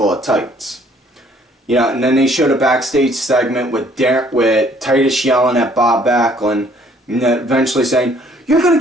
of tights. Yeah, and then they showed a backstage segment with Titus yelling at Bob Backlund, and then eventually saying, "You're gonna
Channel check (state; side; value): normal; both; correlation 0.61